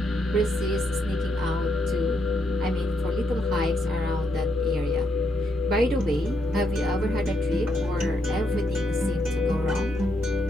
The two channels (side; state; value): both; normal; correlation 0.78